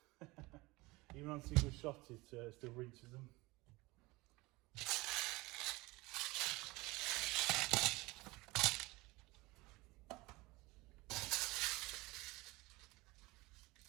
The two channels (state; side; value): quieter; left; 22.3 dB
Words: Even on single shot, it still rinses them.